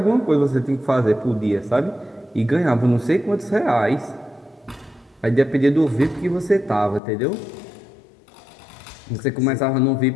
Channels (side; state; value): right; drops out; at 7.0 s